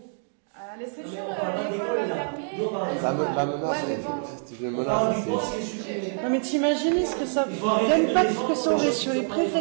À l'Estréture, l'école va fermer. Ouais, mais bon. Non, mais t'imagines ce que ça. L'impact que ça aurait sur les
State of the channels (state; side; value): silent; left; 60 dB below the other